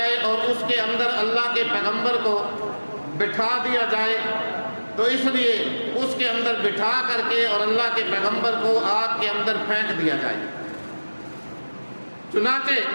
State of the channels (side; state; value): both; inverted; correlation -1.00